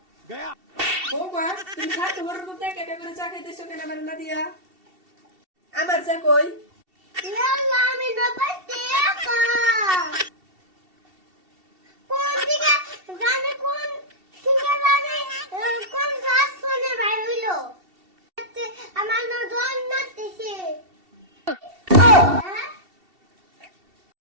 गया বৌমা, তুমি খাতে বড়র মধ্যে একা একা করে চা খাইতেছো কেন আমার না দিয়া? আমার চা কই? ইয়াল্লা আমি না পাইতে একা কোন দিকে জানে কোন দিকে জানে কোন গাছ শুনে ভাই হইলো আমার না দন নাতেছে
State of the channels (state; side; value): late; left; 2.7 ms